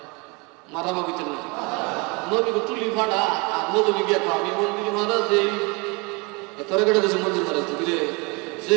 মারা ভাবিতে না নবীকে তুলি ফাটা। আর নবী গিয়ে আমি মন্দিরে মারা দেই, তোরা কেটে দিয়েছে মন্দির মারা তুই রে, যে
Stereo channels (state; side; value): quieter; left; 28.8 dB